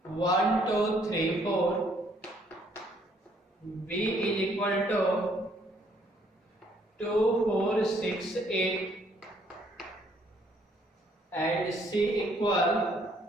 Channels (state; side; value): normal; both; correlation 0.66